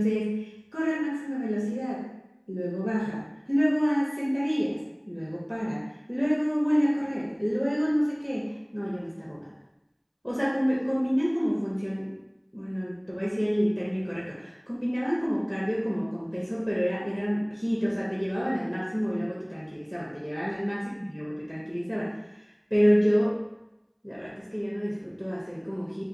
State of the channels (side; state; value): both; identical; correlation 1.00